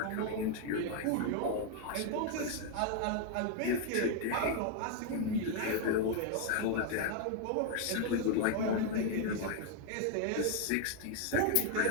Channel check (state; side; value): different; both; correlation 0.00